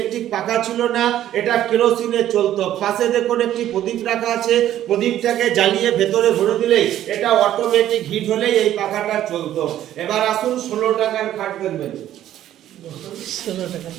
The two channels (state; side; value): quieter; left; 12.2 dB